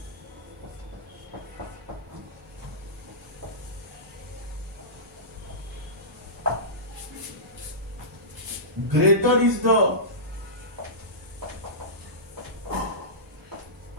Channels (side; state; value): both; normal; correlation -0.19